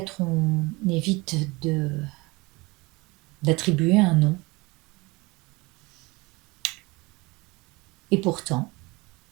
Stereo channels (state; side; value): quieter; left; 24.2 dB